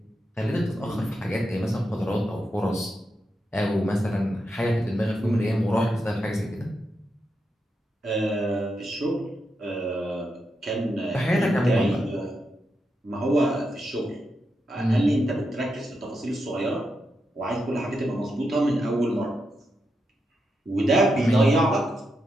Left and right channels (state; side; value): normal; both; correlation 0.85